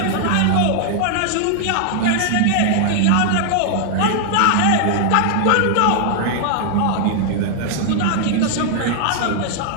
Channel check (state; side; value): different; both; correlation 0.00